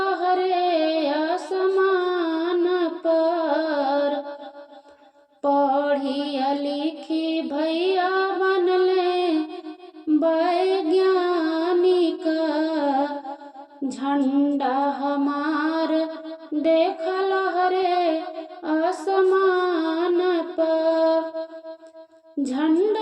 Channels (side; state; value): both; identical; correlation 1.00